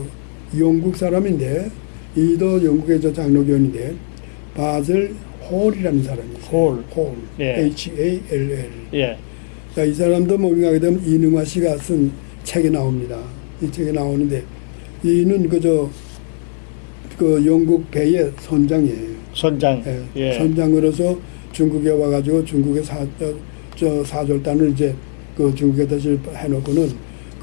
영국 사람인데 이도 영국의 저 장로교인인데 바젤 홀이라는 사람이 있어요. 홀. 예. Hall. 예. 자, 이 사람도 뭔가 하게 되면 이능화 씨가 쓴 책에 나옵니다. 이 책에 나오는데 이는 그 영국 배의 선장이에요. 선장. 예. 예. 선장으로서 중국에 와가지고 중국의 사절단을 이제 그 중국에 다시 해놓고는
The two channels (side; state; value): right; silent; 59 dB below the other